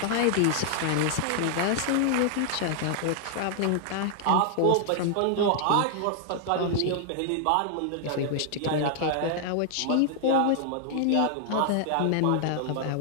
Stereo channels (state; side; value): different; both; correlation 0.00